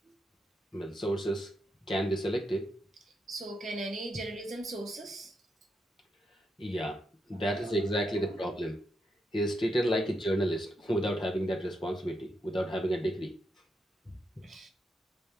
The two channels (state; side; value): normal; both; correlation 0.82